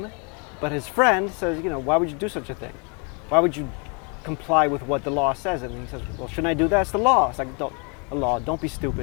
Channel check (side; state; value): right; quieter; 35.1 dB